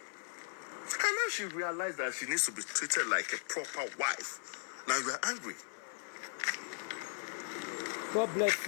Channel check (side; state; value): right; silent; 53 dB below the other